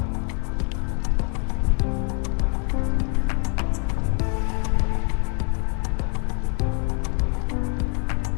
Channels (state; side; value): quieter; right; 38.1 dB